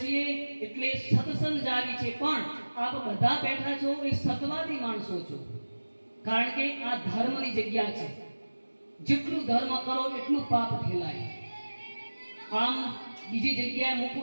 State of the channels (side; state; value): both; inverted; correlation -1.00